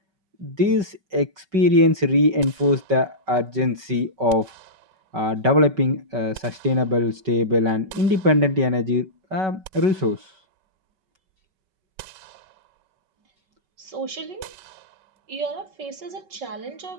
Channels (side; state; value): left; late; 5.3 ms